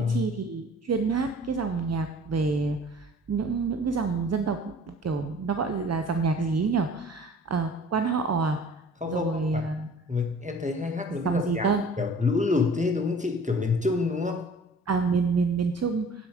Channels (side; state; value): both; normal; correlation 0.48